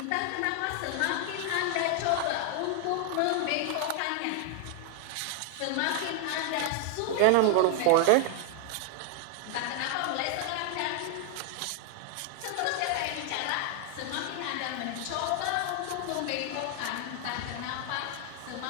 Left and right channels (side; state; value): both; different; correlation 0.00